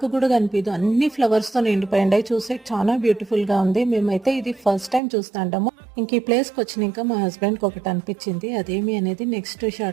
కూడా కనిపించదు, అన్ని ఫ్లవర్స్తో నిండిపోయిండాయి. చూసే చాలా బ్యూటిఫుల్గా ఉంది. మేమైతే ఇది ఫస్ట్ టైం చూస్తాంటాము. ఇంక ఈ ప్లేస్కి వచ్చినాక మా హస్బెండ్కి ఒకటి అనిపించింది, అదేమి అనేది నెక్స్ట్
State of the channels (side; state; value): left; drops out; at 5.0 s